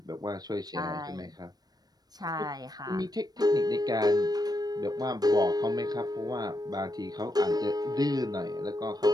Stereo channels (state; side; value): late; left; 0.19 ms